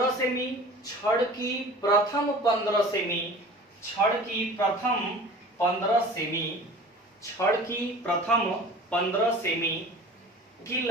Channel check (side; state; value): both; normal; correlation 0.42